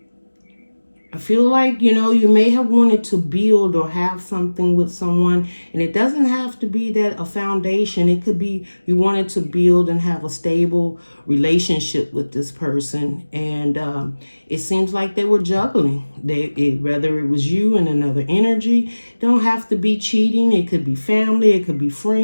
I feel like, you know, you may have wanted to build or have something with someone, and it doesn't have to be that a foundation. It could be you wanted to build and have a stable relationship with this person, and it seems like they were juggling. Whether it was you and another energy, don't have to be cheating. It could be family, it could be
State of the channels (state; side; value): inverted; both; correlation -1.00